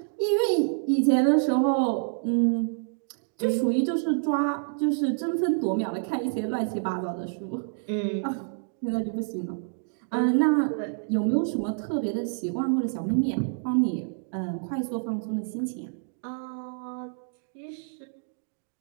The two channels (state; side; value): silent; left; digital silence